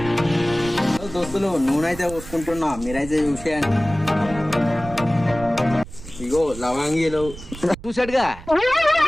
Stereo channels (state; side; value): noise; right; rumble, 14 dB below the sound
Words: దోస్తులు, నూనె అయితే పోసుకుంటున్నా. మీరైతే చూసేయండి. ఇగో లవంగీలు చూసాడుగా.